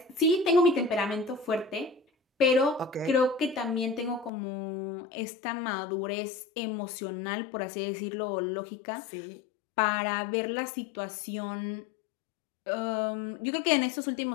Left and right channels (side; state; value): right; drops out; at 4.3 s